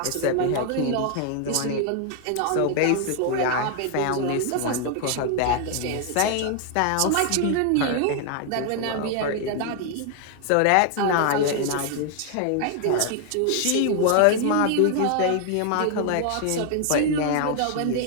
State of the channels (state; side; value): different; both; correlation 0.00